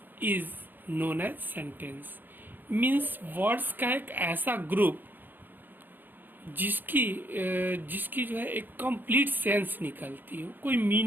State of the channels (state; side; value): late; left; 0.091 ms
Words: is known as sentence. Means words का एक ऐसा group जिसकी जो है एक complete sense निकलती हो, कोई